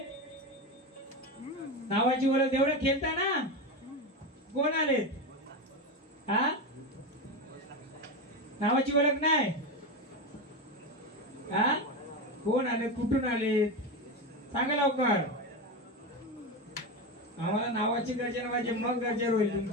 नावाची ओळख एवढं खेळता ना. कोण आले? हा, नावाची ओळख नाही. हा, कोण आले? कुठून आले? सांगा लवकर. आम्हाला नावाची गर्जना पाहिजे, मग गरजेवर होईल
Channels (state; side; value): normal; both; correlation 0.17